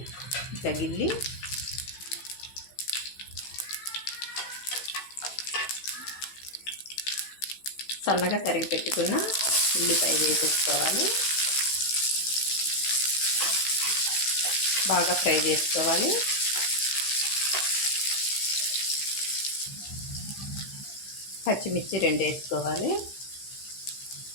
ఇట్లా గిల్లి. సన్నగా తరిగి పెట్టుకున్న ఉల్లిపాయ వేసేసుకోవాలి, బాగా ఫ్రై చేసుకోవాలి. పచ్చిమిర్చి 2 వేసుకోవాలి.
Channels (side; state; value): right; late; 15 ms